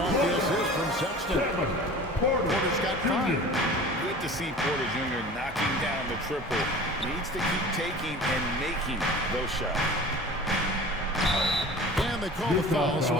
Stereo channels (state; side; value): normal; both; correlation 0.40